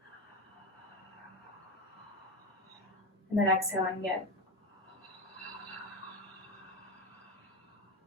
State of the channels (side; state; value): both; normal; correlation 0.18